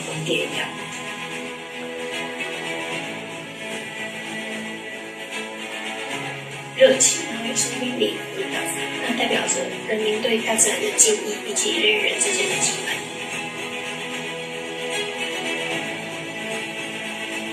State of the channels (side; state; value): both; identical; correlation 1.00